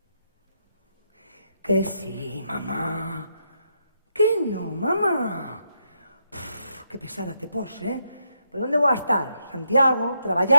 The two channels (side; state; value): both; inverted; correlation -0.79